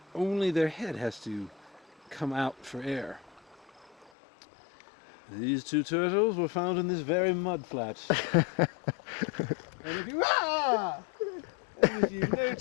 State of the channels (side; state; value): right; drops out; at 4.1 s